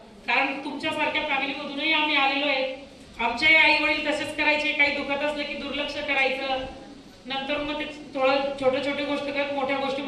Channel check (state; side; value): identical; both; correlation 1.00